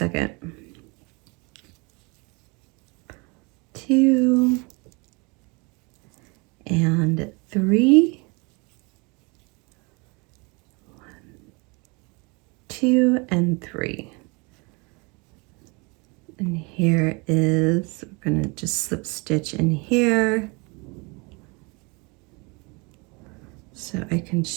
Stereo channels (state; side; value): quieter; left; 28.9 dB